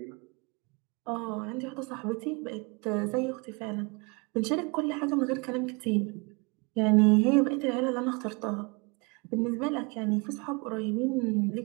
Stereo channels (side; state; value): left; quieter; 30.2 dB